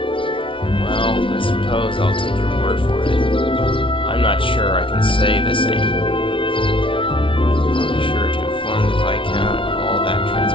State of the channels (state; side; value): late; right; 0.25 ms